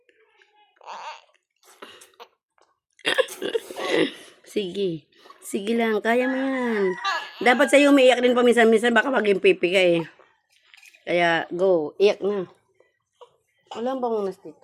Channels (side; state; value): both; identical; correlation 1.00